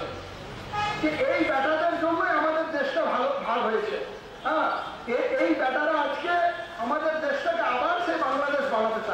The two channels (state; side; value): identical; both; correlation 1.00